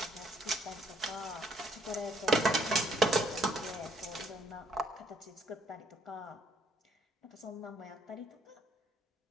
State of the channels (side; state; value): both; normal; correlation 0.66